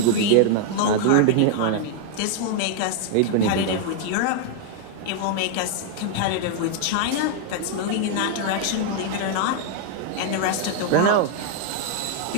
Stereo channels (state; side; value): different; both; correlation 0.00